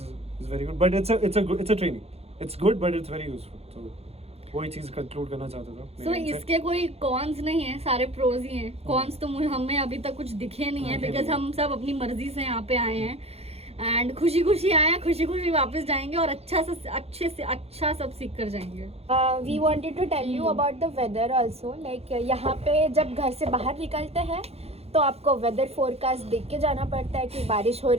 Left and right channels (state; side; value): late; left; 0.29 ms